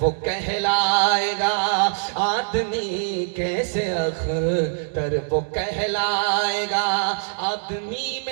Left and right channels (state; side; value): silent; left; digital silence